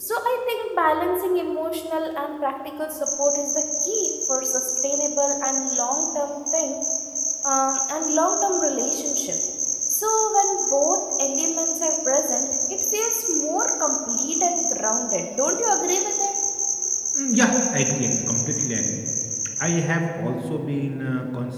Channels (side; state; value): both; identical; correlation 1.00